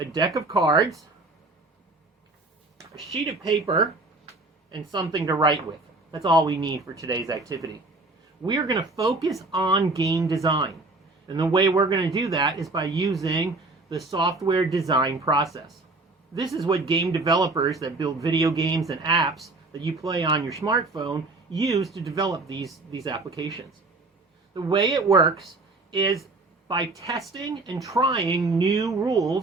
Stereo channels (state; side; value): quieter; left; 3.2 dB